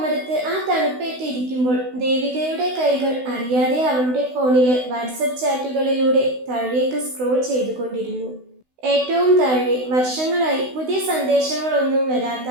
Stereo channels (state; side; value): late; left; 16 ms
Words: ആ തണുപ്പേറ്റിരിക്കുമ്പോൾ ദേവികയുടെ കൈകൾ അറിയാതെ അവളുടെ ഫോണിലെ വാട്സപ്പ് ചാറ്റുകളിലൂടെ താഴേക്ക് സ്ക്രോൾ ചെയ്തുകൊണ്ടിരുന്നു. ഏറ്റവും താഴെ വർഷങ്ങളായി പുതിയ സന്ദേശങ്ങളൊന്നും വരാത്ത